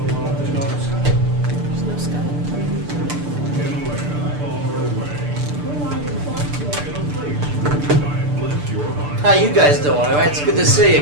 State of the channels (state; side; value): late; left; 6.8 ms